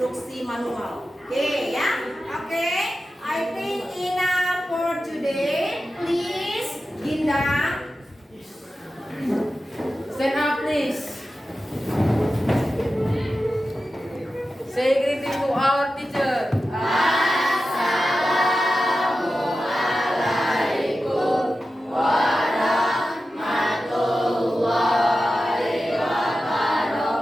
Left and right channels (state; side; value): normal; both; correlation 0.93